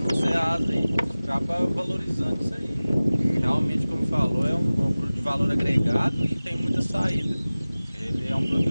Ceasa aí. Acaba valorizando isso aí. Realmente, como falou, é um produto de valor agregado e tem muita saída. Ele é um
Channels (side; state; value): both; inverted; correlation -0.98